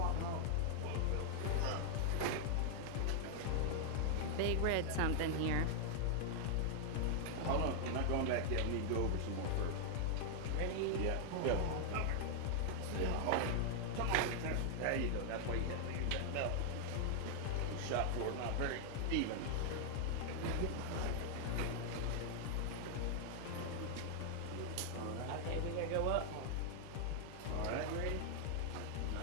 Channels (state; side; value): different; both; correlation 0.00